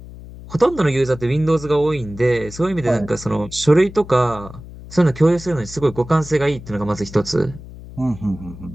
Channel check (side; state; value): left; noise; hum, 15 dB below the sound